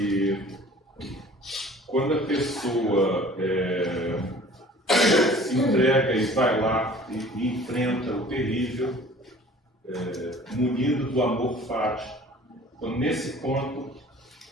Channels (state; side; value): normal; both; correlation 0.48